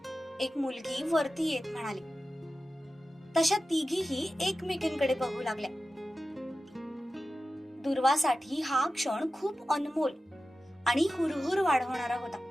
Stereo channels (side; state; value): both; normal; correlation 0.94